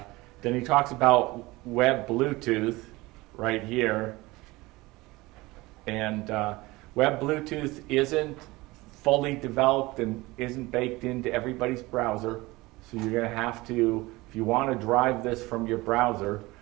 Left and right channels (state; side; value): quieter; left; 21.1 dB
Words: he talks about web Bluetooth right here. And web Bluetooth isn't fully developed and isn't baked into everybody's browser. So you're going to have to, if you want to drive this from your browser